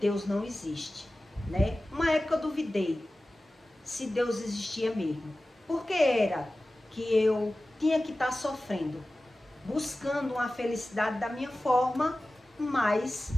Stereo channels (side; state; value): both; normal; correlation 0.96